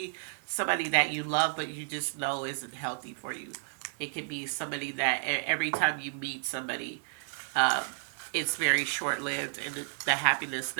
somebody that you love, but you just know isn't healthy for you. It could be somebody that every time you meet somebody, um, it's very short lived and the happiness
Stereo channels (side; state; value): left; silent; digital silence